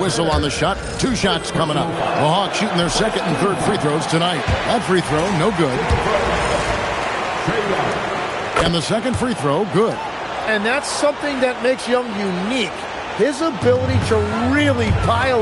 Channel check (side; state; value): both; identical; correlation 1.00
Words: on the shot. 2 shots coming up. The Hawks shooting their second and third free throws tonight. That free throw, no good. And the second free throw, good. And that's something that makes Young unique. His ability to really